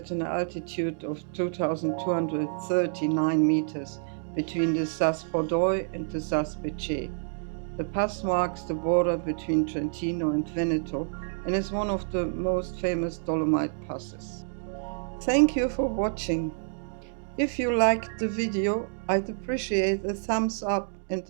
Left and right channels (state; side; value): silent; left; digital silence